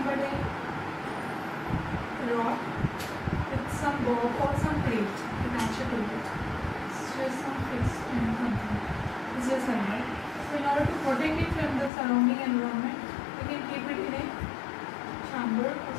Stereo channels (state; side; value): drops out; right; at 11.9 s